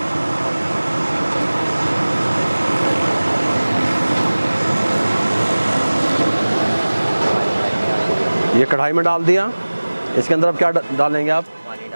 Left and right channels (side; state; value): both; inverted; correlation -1.00